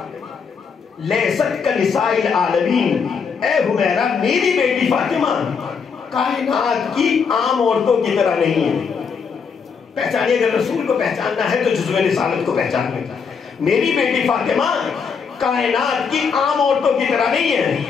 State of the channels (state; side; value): quieter; right; 6.0 dB